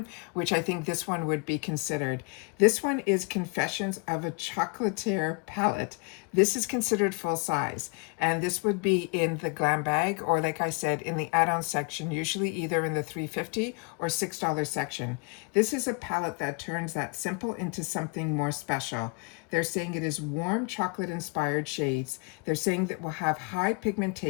which I think this one would be considered. This one is Confessions of a Chocolatier palette. This is considered full size, and this would be in the Glam bag, or like I said, in the add-on section, usually either in the $3.50 or $6 section. This is a palette that turns that simple into something more special. They're saying it is warm chocolate-inspired shades. They're saying that will have high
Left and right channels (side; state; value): right; quieter; 34.1 dB